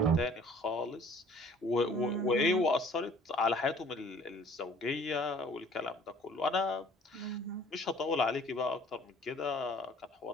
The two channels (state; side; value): normal; both; correlation 0.53